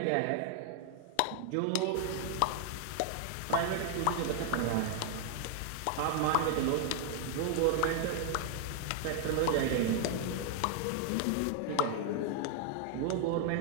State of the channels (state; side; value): different; both; correlation 0.00